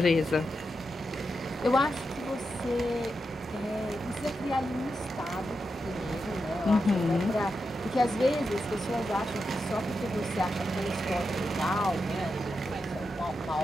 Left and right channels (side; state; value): both; normal; correlation 0.87